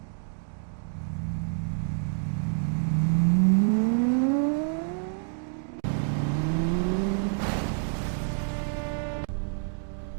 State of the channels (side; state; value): left; silent; 59 dB below the other